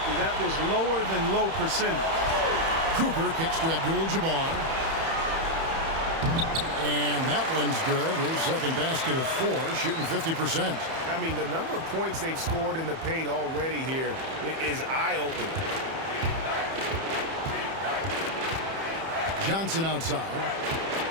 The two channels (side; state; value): left; late; 31 ms